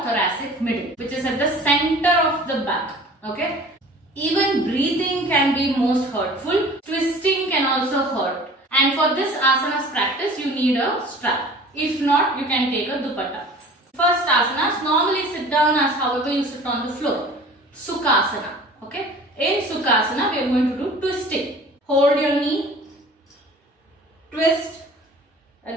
thoracic middle, which is at the center of the back. Okay. Even breathing can be most hurtful. Twisting can also hurt. And for this asanas practice, you need a strap. If not, you can take a dupatta. First asanas, normally sit down as however you sit on the floor. Sukhasana. Okay. In Sukhasana, we are going to do twisting. Hold your knee. Twist.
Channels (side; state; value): both; normal; correlation 0.45